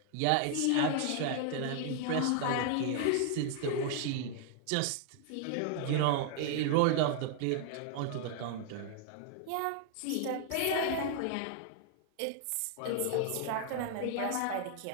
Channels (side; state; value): both; different; correlation 0.00